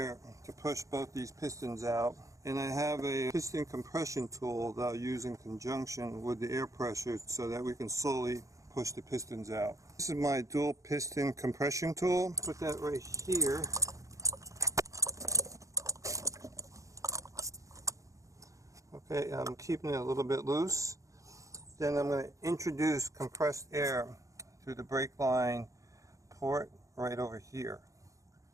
to push both these pistons out. And I have a piston compression tool that I'll use in conjunction with the air pressure so that we can slowly push the pistons out. This is my dual piston compression tool. Put that right here. Okay, I'm keeping it a little bit loose. Then I'm going to introduce compressed air through the brake line port right over here.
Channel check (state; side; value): late; left; 0.16 ms